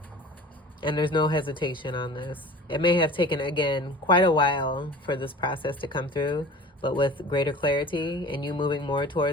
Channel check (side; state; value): both; normal; correlation 0.41